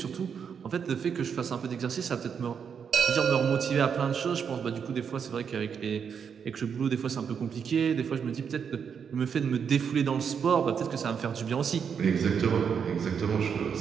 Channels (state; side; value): quieter; left; 7.0 dB